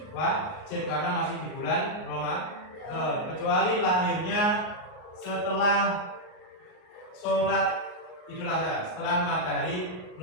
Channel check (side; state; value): right; late; 38 ms